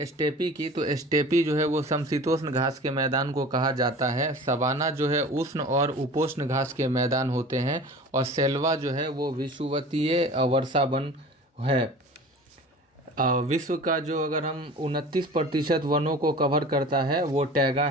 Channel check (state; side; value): normal; both; correlation 0.40